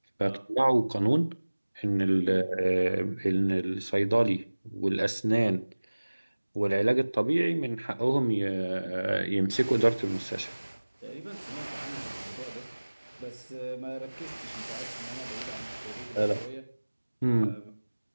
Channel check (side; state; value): both; inverted; correlation -1.00